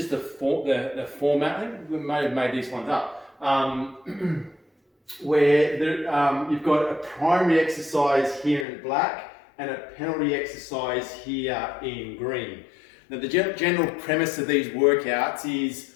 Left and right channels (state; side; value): drops out; right; at 8.7 s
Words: the format. I think we may have made these ones up, where you've got a primary exercise here in black and a penalty exercise here in green. Now the general premise of these workouts is